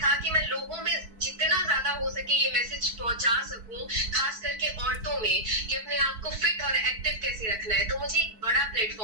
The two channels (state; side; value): late; left; 4.5 ms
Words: कि मैं लोगों में जितना ज्यादा हो सके ये मैसेज पहुंचा सकूं, खास करके औरतों में, कि अपने आप को फिट और एक्टिव कैसे रखना है। तो मुझे एक बड़ा